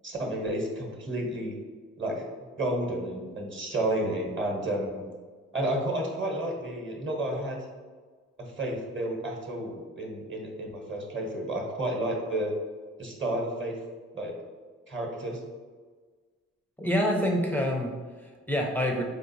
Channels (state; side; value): normal; both; correlation 0.45